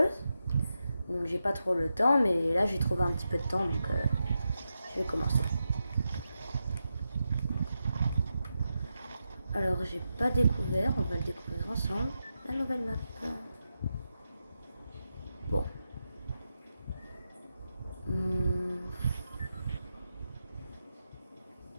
Donc j'ai pas trop le temps, mais là j'ai trouvé un petit peu de temps, donc je vais commencer. Alors j'ai pas découvert, on va le découvrir ensemble, la nouvelle map. Bon.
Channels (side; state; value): both; inverted; correlation -0.88